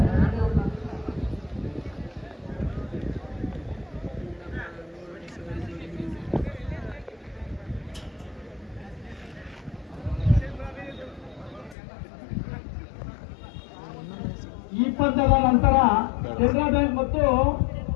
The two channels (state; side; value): drops out; right; at 11.8 s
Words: ಈ ಪಂದ್ಯದ ನಂತರ ಕೆನರಾ ಬ್ಯಾಂಕ್